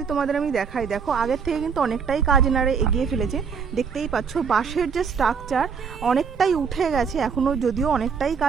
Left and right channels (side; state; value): left; quieter; 6.2 dB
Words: তোমাদের আমি দেখাই, দেখো আগের থেকে কিন্তু অনেকটাই কাজ এনারা এগিয়ে ফেলেছে। দেখতেই পাচ্ছ বাঁশের যে স্ট্রাকচার অনেকটাই উঠে গেছে, এখনও যদিও অনেকটাই